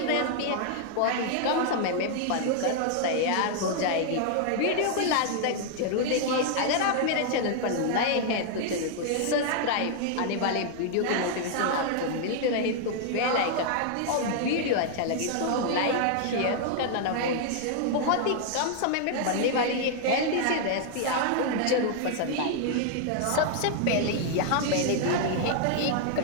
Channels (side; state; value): both; different; correlation 0.00